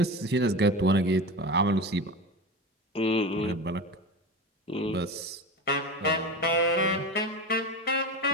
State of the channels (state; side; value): normal; both; correlation 0.26